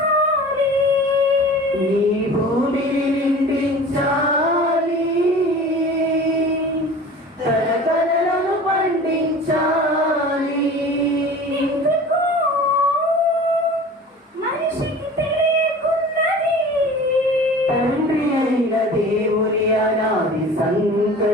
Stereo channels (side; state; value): both; normal; correlation 0.40